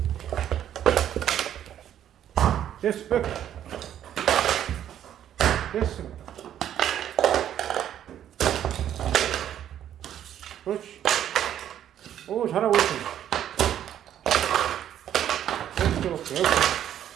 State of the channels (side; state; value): left; quieter; 10.6 dB